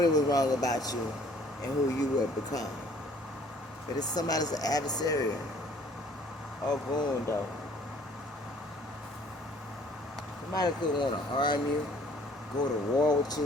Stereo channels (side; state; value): both; normal; correlation 0.57